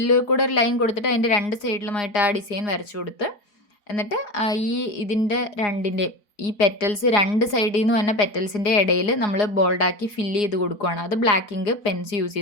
കൂടെ ഒരു ലൈൻ കൊടുത്തിട്ട് അതിൻ്റെ രണ്ട് സൈഡിലുമായിട്ട് ആ ഡിസൈൻ വരച്ചു കൊടുത്ത് എന്നിട്ട് ഇതിൻ്റെ രണ്ടിൻ്റെയും ഈ പെറ്റൽസ് രണ്ട് സൈഡിൽ നിന്ന് തന്നെ പെറ്റൽസിൻ്റെ ഇടയിൽ നമ്മൾ ബോൾഡാക്കി ഫില്ല് ചെയ്ത് കൊടുക്കുകയാണ്. അത് ബ്ലാക്ക് ഇങ്ക് പെൻസ് യൂസ്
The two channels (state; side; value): late; right; 4.8 ms